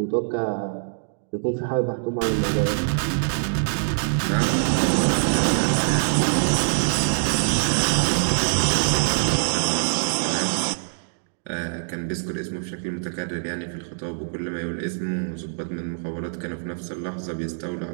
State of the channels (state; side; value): silent; left; digital silence